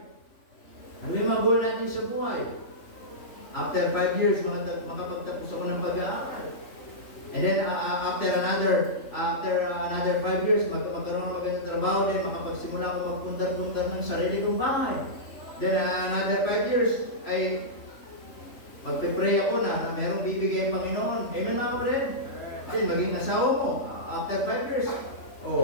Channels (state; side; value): late; right; 3.5 ms